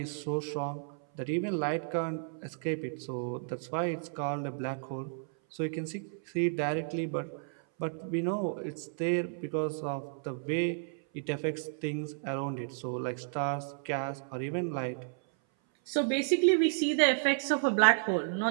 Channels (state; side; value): silent; left; 56 dB below the other